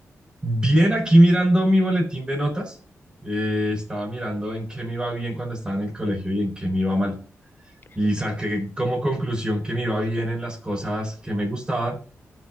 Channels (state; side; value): normal; both; correlation 0.91